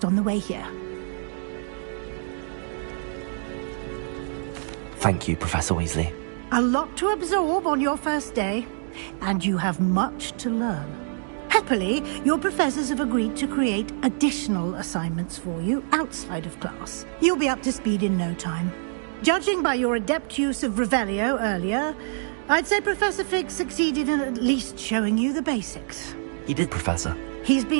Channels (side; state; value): left; silent; digital silence